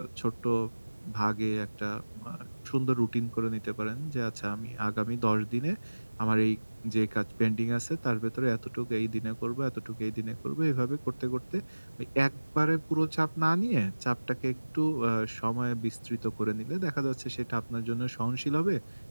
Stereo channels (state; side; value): inverted; both; correlation -1.00